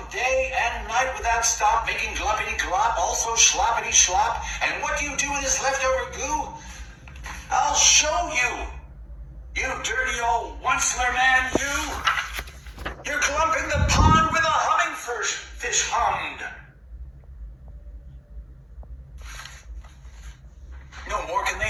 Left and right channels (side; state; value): both; identical; correlation 1.00